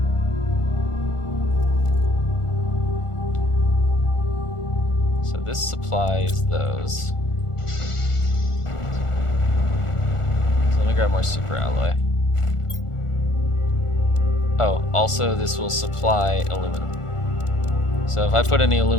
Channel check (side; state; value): right; late; 1.4 ms